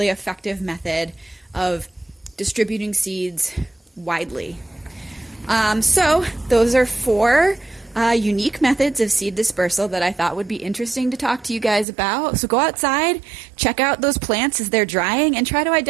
effective method of distributing seeds widely. So those are 4 unique methods of seed dispersal that I thought would be interesting to talk to you guys about. So go outside, check out those plants as they're drying, and try to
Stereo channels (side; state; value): left; drops out; at 11.9 s